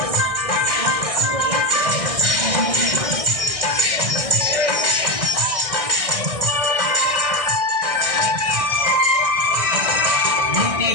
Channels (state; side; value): late; left; 1.6 ms